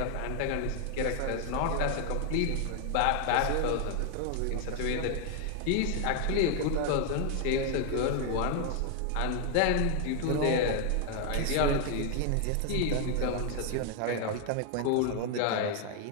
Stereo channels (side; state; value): both; different; correlation 0.00